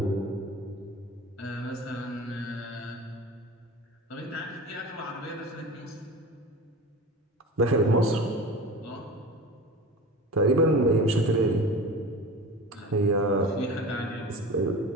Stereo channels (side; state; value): both; normal; correlation 0.34